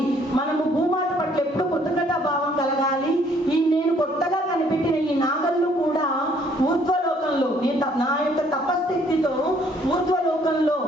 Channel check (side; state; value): both; normal; correlation 0.63